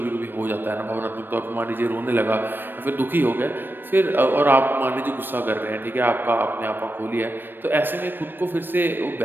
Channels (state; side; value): late; left; 0.095 ms